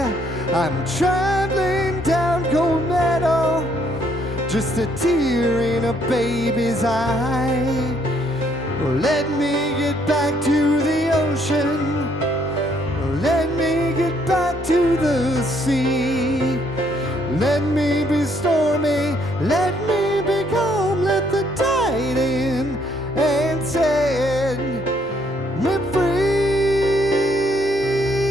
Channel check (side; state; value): both; normal; correlation 0.68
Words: I'm traveling down Gold Meadow, just a tear in a baby's eye. Well, let me get back to the ocean. Well, let me get back to the sea. Let me be stormy. Let me be calm. Let the tide in and set me free.